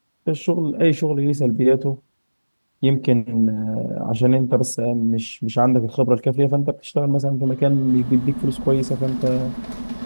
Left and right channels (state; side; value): inverted; both; correlation -1.00